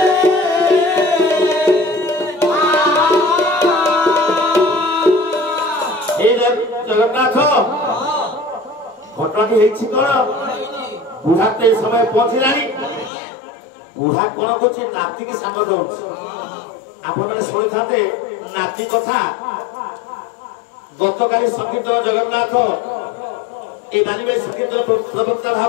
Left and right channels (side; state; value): right; drops out; at 13.1 s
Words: ए जगन्नाथ घटना हेछि कोन बुढ़ा ते समय पहुंचलानी बुढ़ा कोन कोछि नाती के संग दउछ आपण माने सुनि थाते नाची कथा गतकाली संकीर्तन जगन्नाथ ए मानिबे संकीर्तन प्रवक्ता